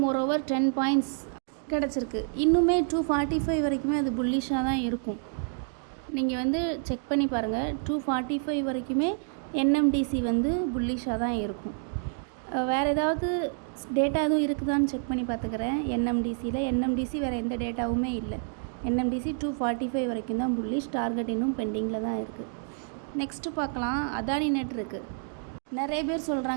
மோரோவர் 10 பாயிண்ட்ஸ் கிடச்சிருக்கு. இன்னுமே 245 வரைக்குமே அது புல்லிஷாக தான் இருக்கும். நீங்கள் செக் பண்ணி பாருங்கள், 245 வரைக்குமே என்எம்டிசி புல்லிஷாக தான் இருக்கும். வேறு ஏதாவது டேட்டா எதுவும் இருக்குதான்னு செக் பண்ணி பார்த்துக்கிறேன். என்எம்டிசி வேறு எந்த டேட்டாவுமே இல்லை. என்எம்டிசி 245 வரைக்கும் தான் புல்லிஷ். டார்கெட் இன்னும் பெண்டிங்கில் தான் இருக்குது. நெக்ஸ்ட்டு பார்க்கலாம். அதானி நெட் இருக்குது. நிறைய பேர்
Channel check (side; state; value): left; silent; 59 dB below the other